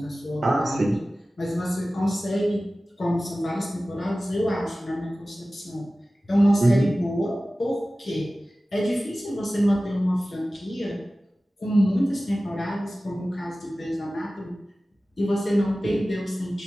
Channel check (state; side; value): normal; both; correlation 0.96